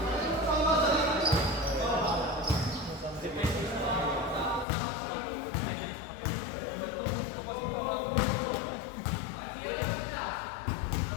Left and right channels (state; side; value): drops out; right; at 4.7 s